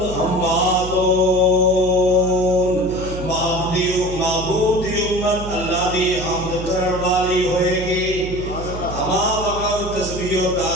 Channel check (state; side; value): noise; right; hum, 9 dB below the sound